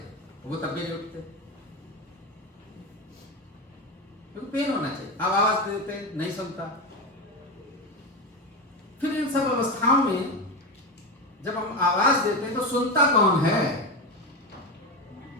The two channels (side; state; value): both; normal; correlation 0.17